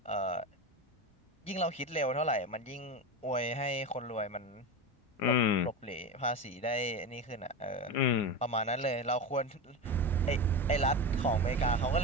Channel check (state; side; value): late; right; 1.7 ms